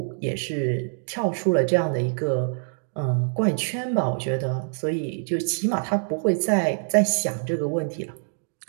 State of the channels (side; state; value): left; silent; digital silence